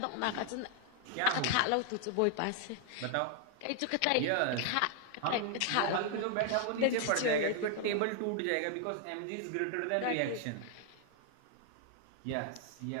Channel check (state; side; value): different; both; correlation 0.00